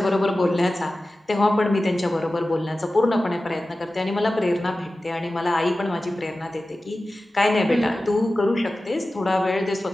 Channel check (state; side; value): normal; both; correlation 0.95